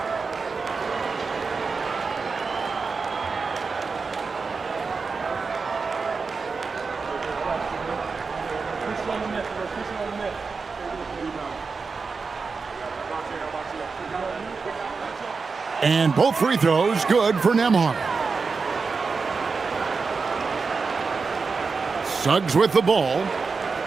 And both free throws good for Nembhard. Suggs with the ball.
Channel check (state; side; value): quieter; left; 4.7 dB